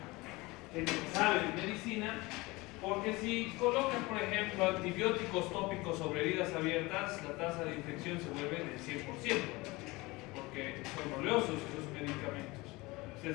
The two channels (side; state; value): right; quieter; 22.6 dB